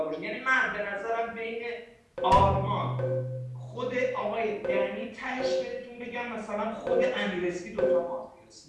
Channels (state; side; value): identical; both; correlation 1.00